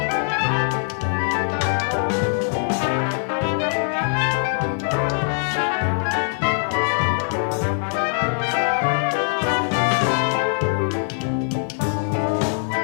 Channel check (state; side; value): silent; right; 64 dB below the other